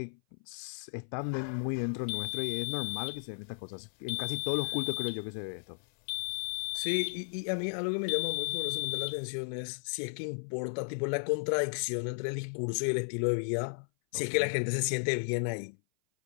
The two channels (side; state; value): right; silent; 55 dB below the other